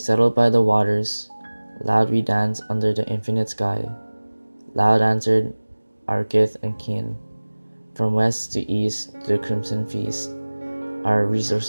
by the waters, loud we danced under the infinite sky. Loud answered our kith and kin, from west to east to the crimson feast. Our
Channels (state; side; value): inverted; both; correlation -1.00